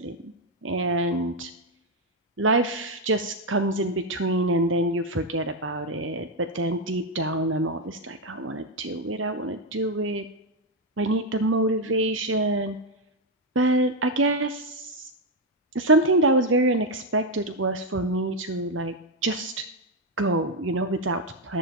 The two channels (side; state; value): both; normal; correlation 0.04